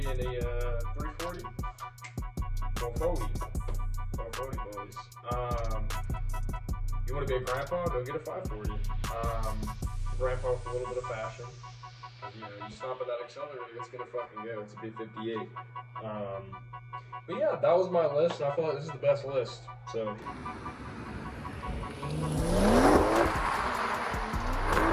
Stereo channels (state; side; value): identical; both; correlation 1.00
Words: and a 340? 440. 440 boys. You want to be a grandpa? Go get a 540. Grandpa with a little bit of fashion. You know, you stop at that accelerator, it's gonna fucking go. It's a B58. But yeah, that was my list, and I feel like this is the best list. So.